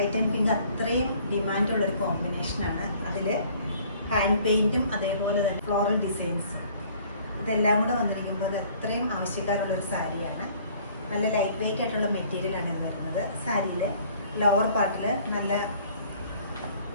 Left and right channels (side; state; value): both; inverted; correlation -0.56